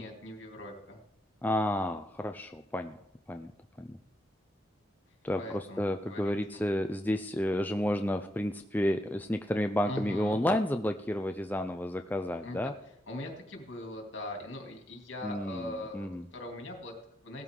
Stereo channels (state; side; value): normal; both; correlation 0.82